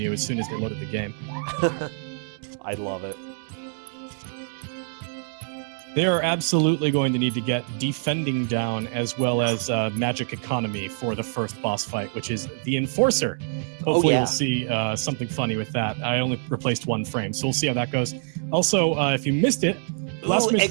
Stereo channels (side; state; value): left; silent; digital silence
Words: as soon as they loaded the game. I love it. They are absolutely going to need to get defending down as well as magic economy for the first boss fight, which is the Enforcer. Hopefully we'll see something funny with that. I only replaced one frame, so we'll see how that goes. Also, if you missed it, Last